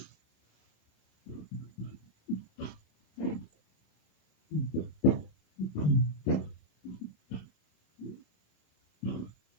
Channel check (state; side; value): late; right; 27 ms